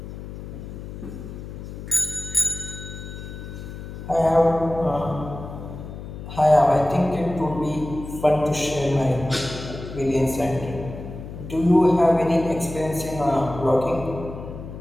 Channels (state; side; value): noise; left; hum, 11 dB below the sound